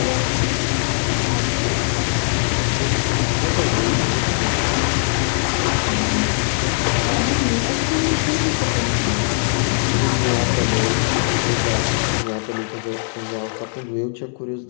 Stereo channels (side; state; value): right; silent; digital silence